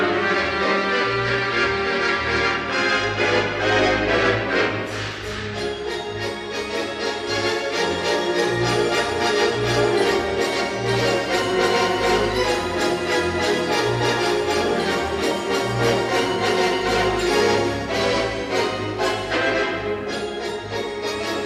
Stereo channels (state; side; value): identical; both; correlation 1.00